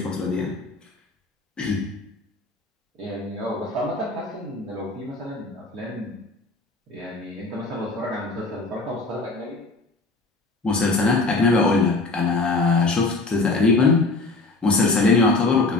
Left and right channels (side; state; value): right; quieter; 3.3 dB